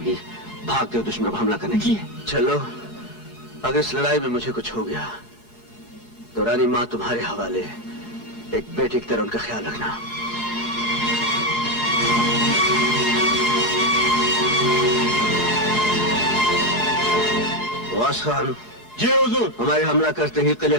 भागते हो दुश्मन पर हमला करने की। चलो, अगर इस लड़ाई में मुझे कुछ हो गया तो रानी माँ तुम्हारे हवाले, एक बेटी की तरह उनका ख्याल रखना। वास खान। जी हुजूर। हमारे हमला करते ही किले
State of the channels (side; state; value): right; late; 4.7 ms